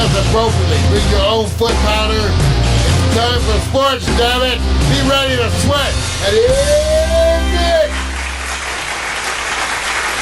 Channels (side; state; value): both; identical; correlation 1.00